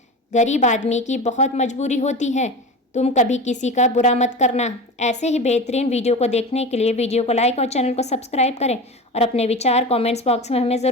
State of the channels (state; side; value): normal; both; correlation 0.29